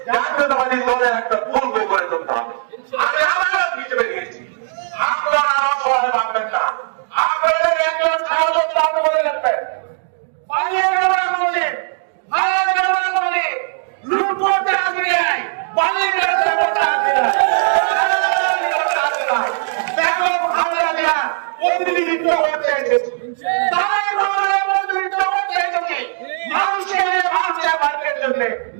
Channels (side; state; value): left; silent; digital silence